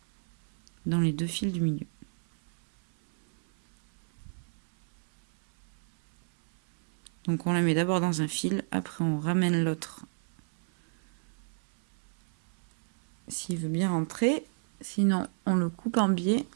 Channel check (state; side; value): silent; left; 57 dB below the other